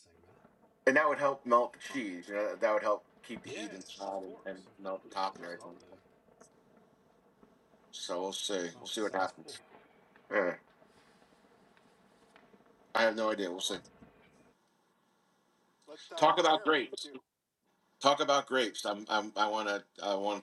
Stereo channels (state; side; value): identical; both; correlation 1.00